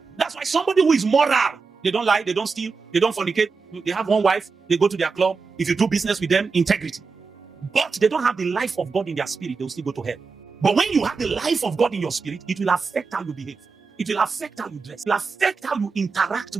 That's why somebody who is moral, they don't lie, they don't steal, they don't fornicate, they have one wife, they go to their club. If you do business with them, integrity. But they don't have the life of God in their spirit, they will still go to hell. But when you have the life of God in your spirit, it will affect how you behave. It will affect how you dress. It will affect how you interact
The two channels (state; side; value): quieter; left; 4.8 dB